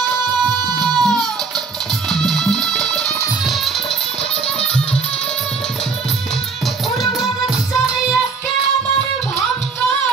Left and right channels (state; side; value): quieter; left; 4.8 dB